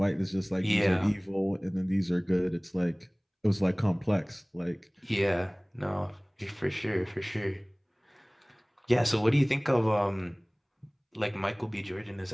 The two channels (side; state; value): both; identical; correlation 1.00